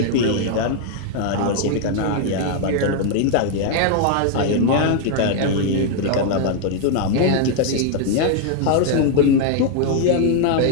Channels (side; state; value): both; different; correlation 0.00